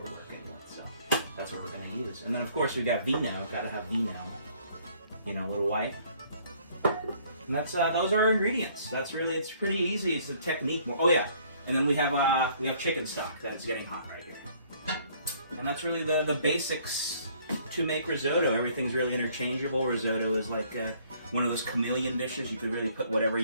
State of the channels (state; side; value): inverted; both; correlation -0.61